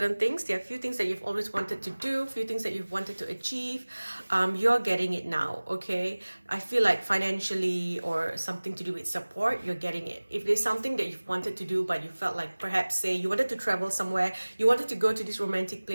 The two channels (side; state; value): both; inverted; correlation -1.00